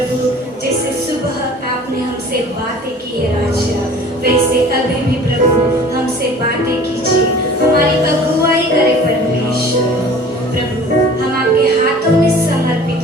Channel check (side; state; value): both; normal; correlation 0.46